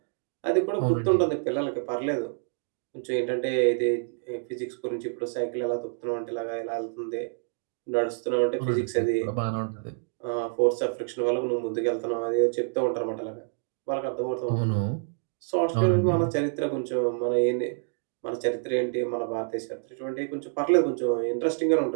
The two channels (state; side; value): silent; left; digital silence